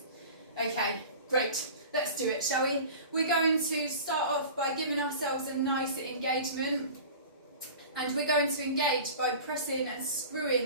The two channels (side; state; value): both; inverted; correlation -0.38